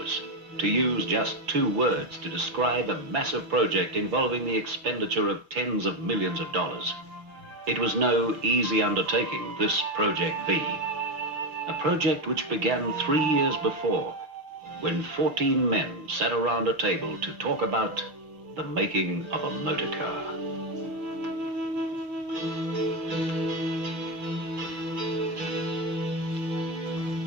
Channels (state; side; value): late; left; 5.8 ms